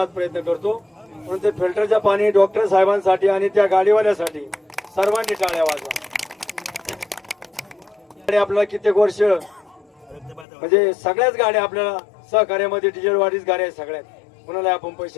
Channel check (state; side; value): drops out; right; at 10.5 s